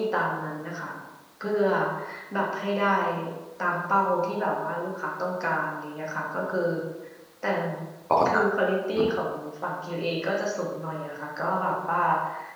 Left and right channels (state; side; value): identical; both; correlation 1.00